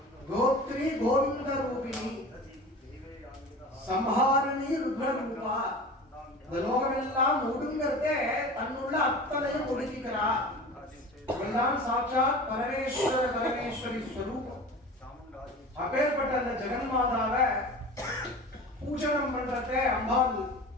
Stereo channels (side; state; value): both; normal; correlation 0.36